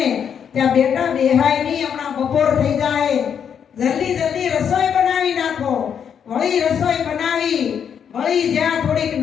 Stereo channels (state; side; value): quieter; right; 7.9 dB